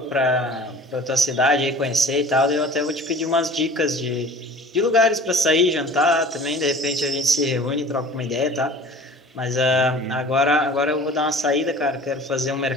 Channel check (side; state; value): both; normal; correlation 0.44